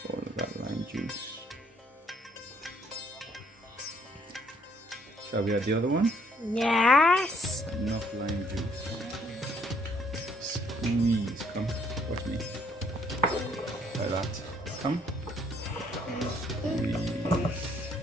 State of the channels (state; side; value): normal; both; correlation 0.65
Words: all of that lime juice. Shall we add the other one? Yes. Enough lime juice. Squeeze. Come, watch me. Like that. Come. Squeeze.